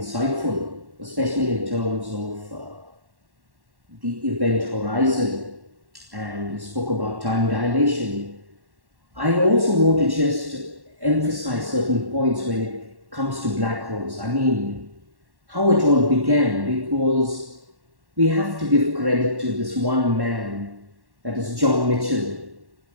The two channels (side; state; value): left; late; 1.1 ms